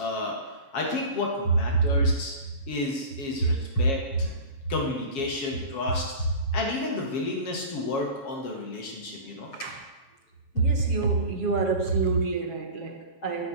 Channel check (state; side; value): late; right; 7.3 ms